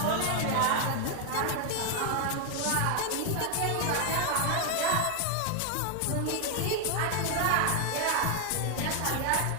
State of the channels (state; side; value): different; both; correlation 0.01